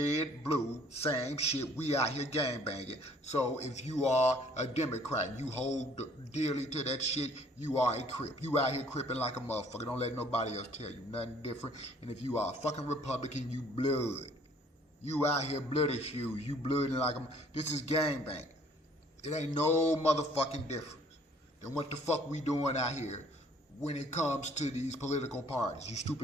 blue, same shit, we out here gangbanging. So if you are a Democrat and you hold dearly to that shit, you are a crip. You out here cripping like a motherfucker. Don't let nobody else tell you nothing different. And if you are a fucking Republican, you blood. You out here bloody shoes. You blooding like a... This is gangbanging. It ain't no motherfucking difference than what the fuck we doing out here when it comes to these political parties. You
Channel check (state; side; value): normal; both; correlation 0.58